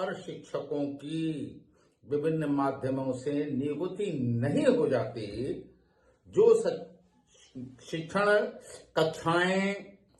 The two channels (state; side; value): identical; both; correlation 1.00